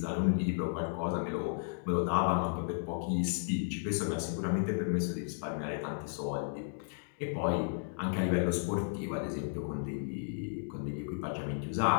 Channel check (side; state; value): right; silent; digital silence